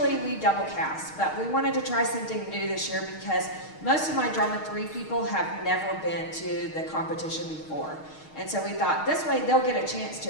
double cast, but we wanted to try something new this year because most of my Drama3 people have never been to the competition before. And so we thought this way they'll get a chance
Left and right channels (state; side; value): late; right; 6.4 ms